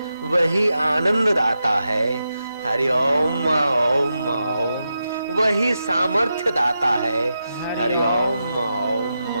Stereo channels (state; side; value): inverted; both; correlation -0.88